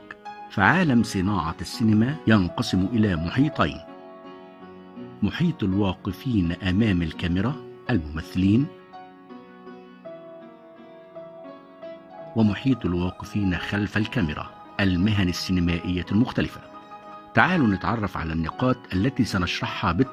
فعالم صناعة السينما ينقسم إلى محيطين: محيط الواقفين أمام الكاميرا الممثلين، ومحيط الواقفين خلف الكاميرا المهن السينمائية المختلفة. تعالوا نتعرف على النقاط التي سنشرحها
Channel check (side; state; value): both; identical; correlation 1.00